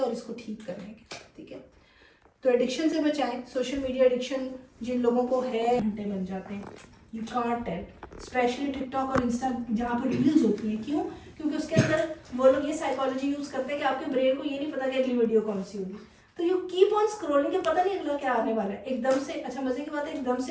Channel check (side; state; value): both; identical; correlation 1.00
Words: इसको ठीक करने के, ठीक है। तो एडिक्शन से बचाएं। सोशल मीडिया एडिक्शन जिन लोगों को है, घंटे बन जाते हैं, you can't tell, specially TikTok और इंस्टा जहाँ पर रील्स होती हैं। क्यों? क्योंकि उसके अंदर वो लोग ये साइकोलॉजी यूज़ करते हैं कि आपके ब्रेन को ये नहीं पता कि अगली वीडियो कौन सी होगी, तो यू कीप ऑन स्क्रॉलिंग, के पता नहीं अगला क्या आने वाला है। एकदम से, अच्छा मजे की बात है, एकदम